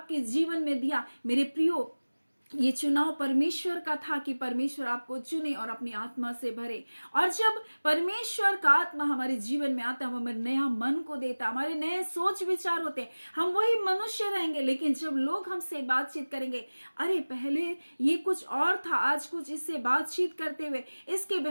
जीवन में दिया, मेरे प्रियो, ये चुनाव परमेश्वर का था कि परमेश्वर आपको चुने और अपनी आत्मा से भरे। और जब परमेश्वर का आत्मा हमारे जीवन में आता है, हमें नया मन को देता, हमारे नए सोच विचार होते हैं, हम वही मनुष्य रहेंगे। लेकिन जब लोग हमसे बातचीत करेंगे, अरे पहले ये कुछ और था, आज कुछ इससे बातचीत करते हुए, इसके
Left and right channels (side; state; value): both; inverted; correlation -1.00